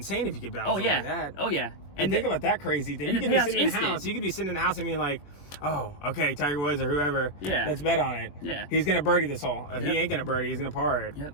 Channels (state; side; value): late; right; 21 ms